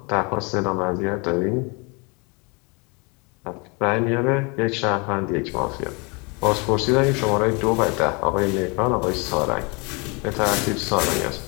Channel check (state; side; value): quieter; right; 30.7 dB